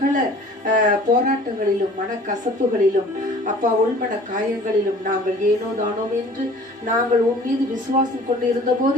போராட்டங்களிலும் மனக்கசப்புகளிலும் அப்பா உள்மன காயங்களிலும் நாங்கள் ஏனோ தானோம் என்று நாங்கள் உன் மீது விசுவாசம் கொண்டு இருந்த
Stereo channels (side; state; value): both; normal; correlation 0.49